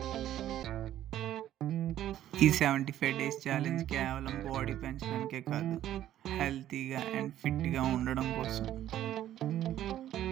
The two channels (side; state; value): left; quieter; 12.2 dB